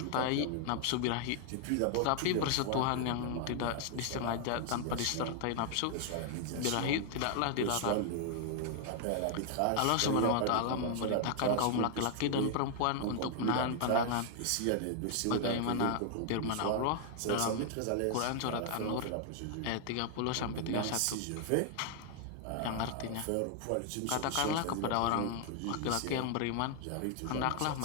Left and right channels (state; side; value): different; both; correlation 0.00